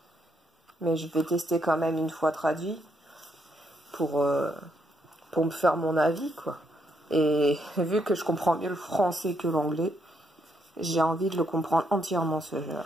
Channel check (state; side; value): normal; both; correlation 0.76